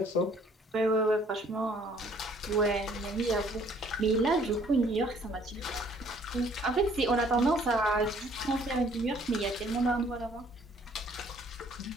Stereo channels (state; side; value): normal; both; correlation 0.60